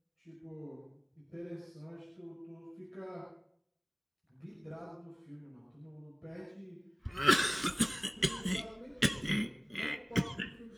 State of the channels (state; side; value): identical; both; correlation 1.00